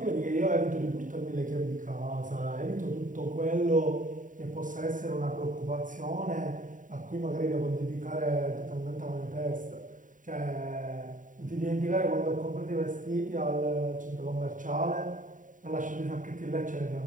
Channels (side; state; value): left; late; 0.38 ms